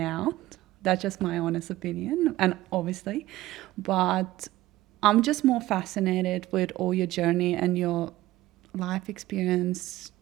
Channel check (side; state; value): left; quieter; 16.7 dB